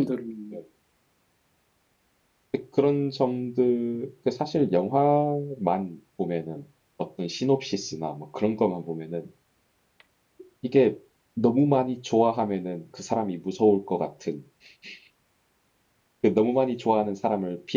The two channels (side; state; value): both; identical; correlation 1.00